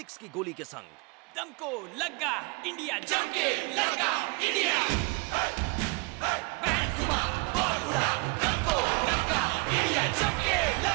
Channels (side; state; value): left; quieter; 28.5 dB